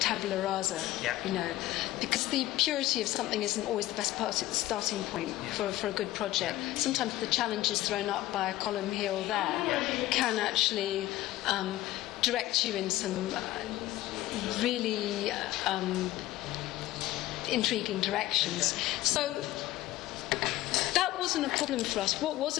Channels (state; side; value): quieter; right; 15.9 dB